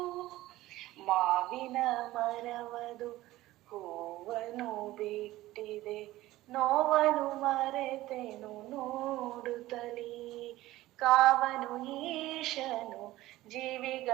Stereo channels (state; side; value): quieter; left; 16.7 dB